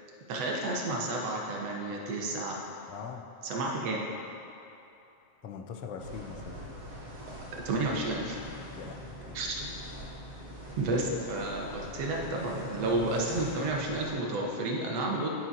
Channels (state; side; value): late; left; 8.0 ms